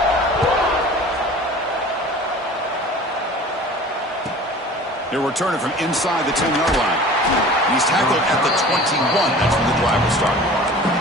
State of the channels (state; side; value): normal; both; correlation 0.42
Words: They're returning from inside the 10-yard line. And he's tackled at the 21. That's when the drive will start.